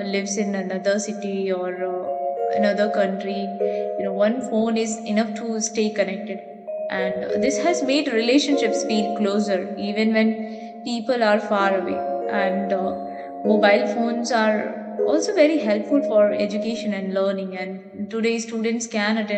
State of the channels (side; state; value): both; identical; correlation 1.00